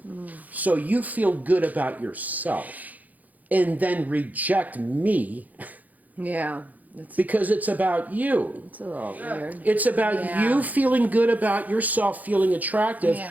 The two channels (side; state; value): left; late; 0.080 ms